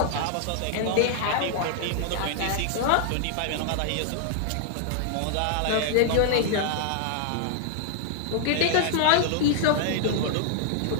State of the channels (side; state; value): both; different; correlation -0.01